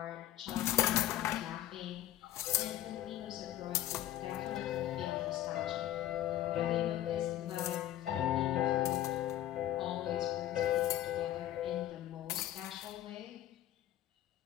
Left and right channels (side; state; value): right; quieter; 13.2 dB